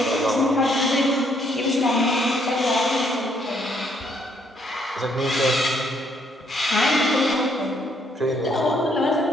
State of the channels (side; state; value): both; normal; correlation 0.69